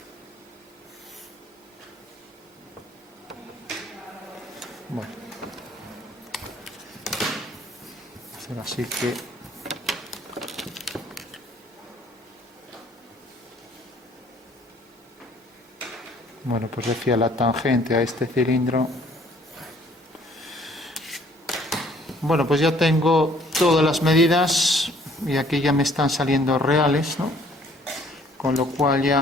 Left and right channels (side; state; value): both; normal; correlation 0.59